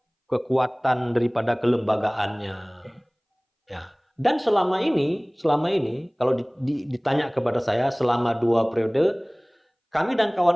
kekuatan daripada kelembagaannya. Dan selama ini kalau ditanya kepada saya selama 2 periode, kami dan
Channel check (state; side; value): identical; both; correlation 1.00